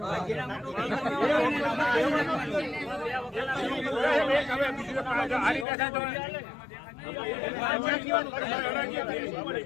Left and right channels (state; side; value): drops out; right; at 5.7 s